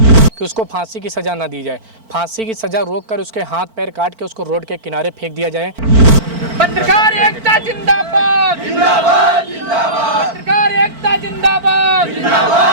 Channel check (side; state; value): left; late; 4.5 ms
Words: कि उसको फांसी की सजा ना दी जाए। फांसी की सजा रोक कर उसके हाथ पैर काट के उसको रोड के किनारे फेंक दिया जाए। पत्रकार एकता जिंदाबाद, जिंदाबाद, जिंदाबाद, पत्रकार एकता जिंदाबाद,